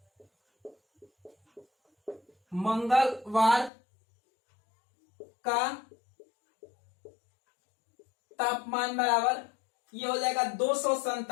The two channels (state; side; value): drops out; right; at 3.7 s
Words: मंगलवार का तापमान बराबर ये हो जाएगा